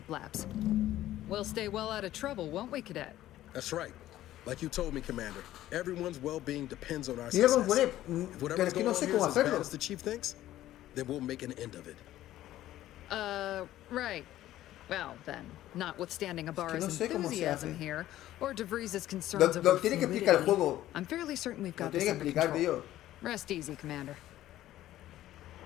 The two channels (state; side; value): quieter; right; 13.9 dB